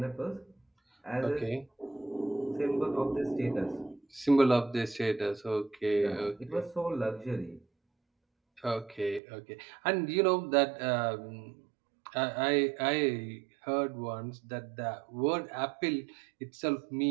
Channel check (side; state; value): left; drops out; at 9.2 s